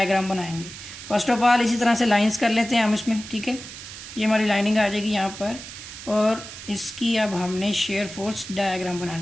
बनाएंगे। फर्स्ट ऑफ ऑल इसी तरह से लाइंस कर लेते हैं हम इसमें। ठीक है, ये हमारी लाइनिंग आ जाएगी यहाँ पर, और इसकी अब हमने शेयर फोर्स डायग्राम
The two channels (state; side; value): noise; right; hiss, 13 dB below the sound